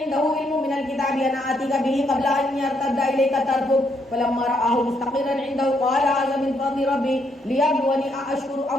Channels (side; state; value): both; normal; correlation 0.75